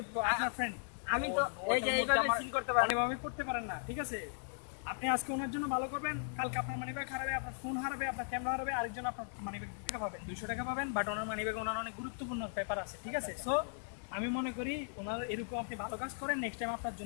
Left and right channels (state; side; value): silent; right; digital silence